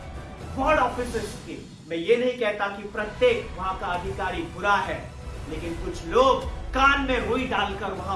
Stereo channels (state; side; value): identical; both; correlation 1.00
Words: वार्ड ऑफिसर्स के, मैं ये नहीं कहता कि प्रत्येक वहां का अधिकारी बुरा है, लेकिन कुछ लोग कान में रुई डालकर